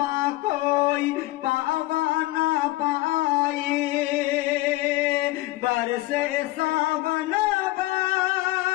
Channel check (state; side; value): quieter; right; 19.2 dB